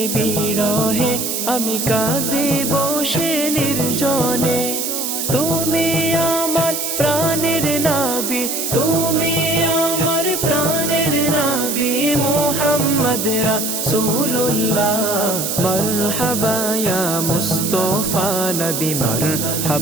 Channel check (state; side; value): noise; right; hiss, 2 dB below the sound